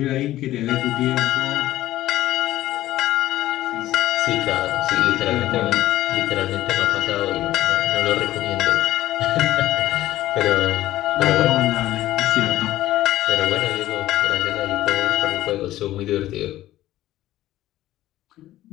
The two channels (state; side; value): quieter; right; 14.7 dB